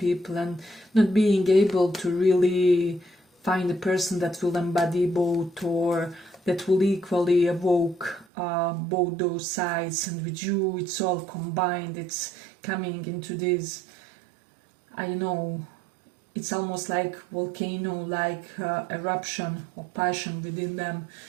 and not being able to really find a person that will embody both, or that will equally evoke both those sides. And with you it's all combined, it's coming into this, I don't know, it's almost like volcano, like eruption of passion within them.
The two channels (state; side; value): drops out; left; at 8.2 s